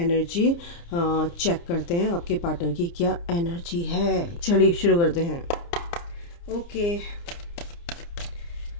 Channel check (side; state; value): right; late; 29 ms